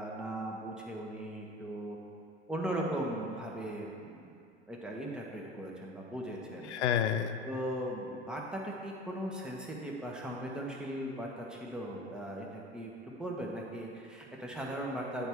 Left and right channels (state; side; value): normal; both; correlation 0.39